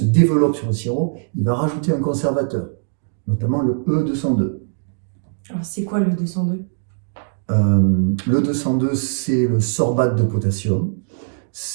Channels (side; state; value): left; silent; digital silence